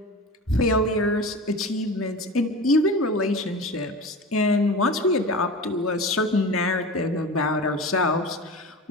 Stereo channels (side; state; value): both; normal; correlation 0.31